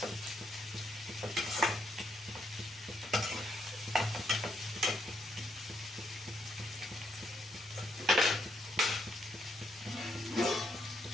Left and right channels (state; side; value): normal; both; correlation 0.74